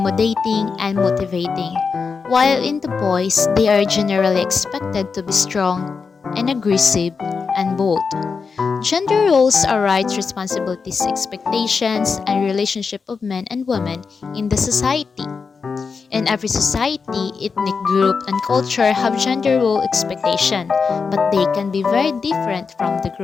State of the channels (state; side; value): quieter; right; 5.2 dB